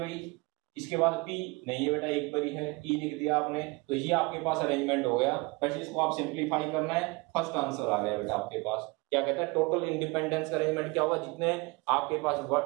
इसके बाद P नहीं है बेटा, एक बारी है, E लिख दिया आपने, तो ये आपके पास अरेंजमेंट हो गया। बस इसको आप सिंपलीफाई करना है, फर्स्ट आंसर आ गया बेटा आपके पास। क्या कहता है टोटल इंडिपेंडेंस का अरेंजमेंट क्या होगा, जितने आपके पास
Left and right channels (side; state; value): left; quieter; 26.3 dB